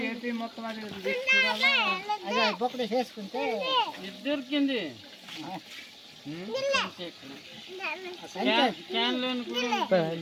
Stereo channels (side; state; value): both; identical; correlation 1.00